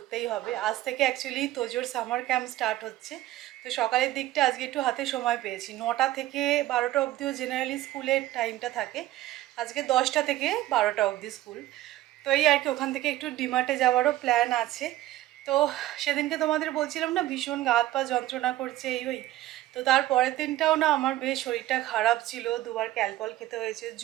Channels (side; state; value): left; quieter; 15.3 dB